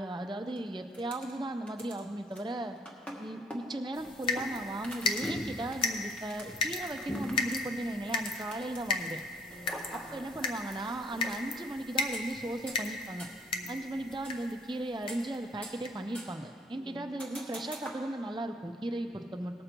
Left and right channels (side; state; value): both; normal; correlation 0.58